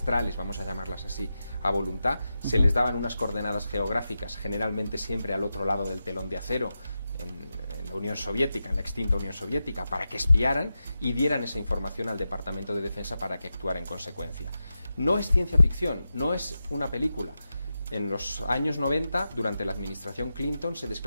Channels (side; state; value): both; inverted; correlation -0.90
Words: vamos a llamarlas así, a voluntad. Se les daban unas coordenadas geográficas, generalmente siempre al otro lado del telón de acero, en la Unión Soviética, en la extinta Unión Soviética, para que espiaran y dieran esa información al Departamento de Defensa para que actuara en consecuencia. No es ciencia ficción, no es una película. En los años 90, durante la administración Clinton, se